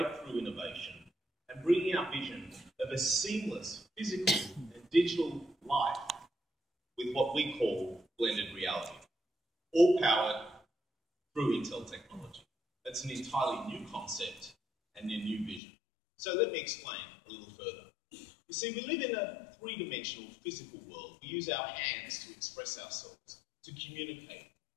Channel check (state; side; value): drops out; right; at 15.6 s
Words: innovation and bringing our vision of a seamless physical and digital life with what we call blended reality, all powered through Intel technology. That's an entirely new concept and a new vision. So let me explain a little further. You see, we live in a three-dimensional physical world. We use our hands to express ourselves, to communicate,